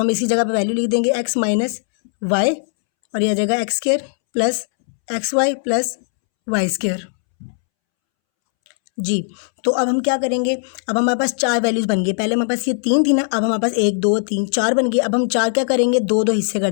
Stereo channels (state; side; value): silent; right; 67 dB below the other